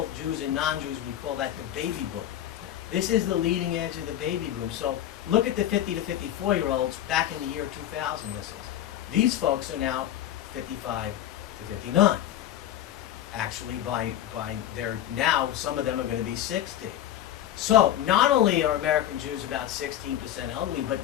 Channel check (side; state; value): right; quieter; 11.9 dB